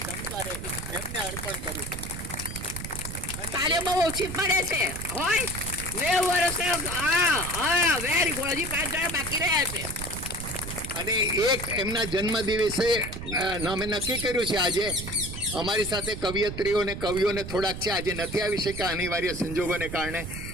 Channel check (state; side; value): noise; right; rumble, 8 dB below the sound